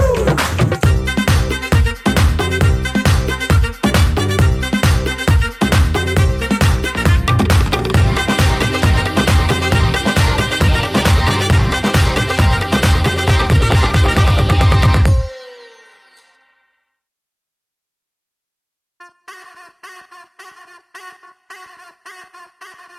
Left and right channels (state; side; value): identical; both; correlation 1.00